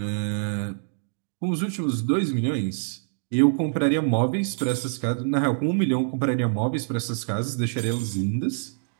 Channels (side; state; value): left; silent; digital silence